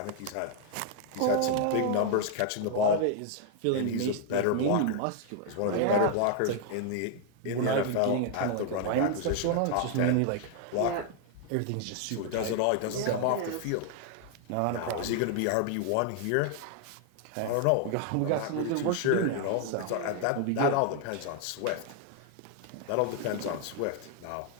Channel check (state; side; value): different; both; correlation 0.00